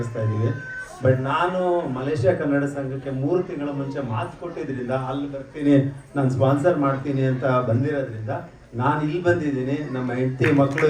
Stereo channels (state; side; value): identical; both; correlation 1.00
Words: ಇದ್ದೀವಿ. ಬಟ್ ನಾನು ಮಲೇಷ್ಯಾ ಕನ್ನಡ ಸಂಘಕ್ಕೆ 3 ತಿಂಗಳ ಮುಂಚೆ ಮಾತು ಕೊಟ್ಟಿದ್ರಿಂದ ಅಲ್ಲಿ ಬರ್ತೀನಿ, ನಾನು ಸ್ಪಾನ್ಸರ್ ಮಾಡ್ತೀನಿ ಅಂತ ಬಂದಿರೋದ್ರಿಂದ ನಾನು ಇಲ್ಲಿ ಬಂದಿದ್ದೀನಿ. ನಮ್ಮ ಹೆಂಡತಿ ಮಕ್ಕಳು